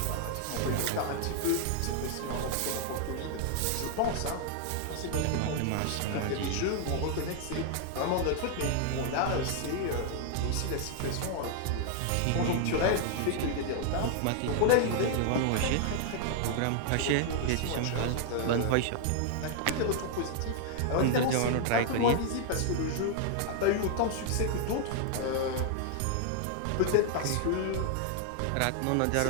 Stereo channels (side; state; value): both; different; correlation 0.00